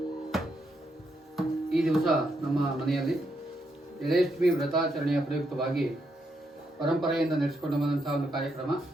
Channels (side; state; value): both; normal; correlation 0.79